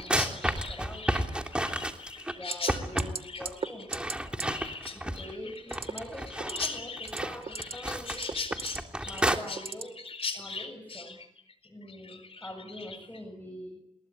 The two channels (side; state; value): both; normal; correlation 0.60